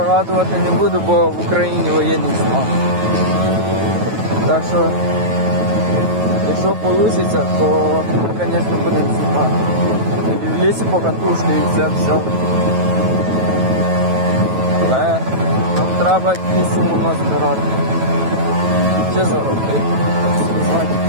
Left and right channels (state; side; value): late; left; 9.2 ms